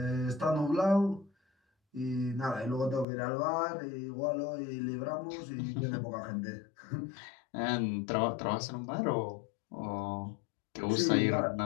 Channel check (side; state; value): right; drops out; at 3.1 s